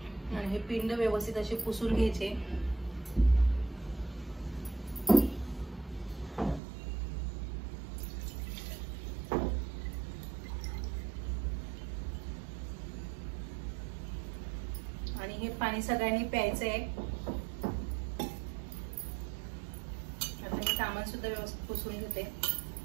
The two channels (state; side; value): drops out; left; at 6.6 s